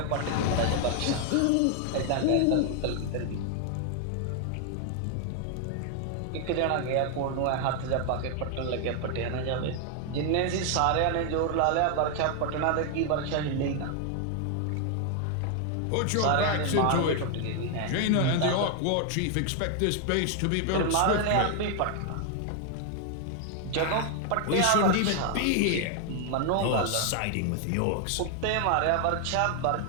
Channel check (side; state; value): both; different; correlation 0.00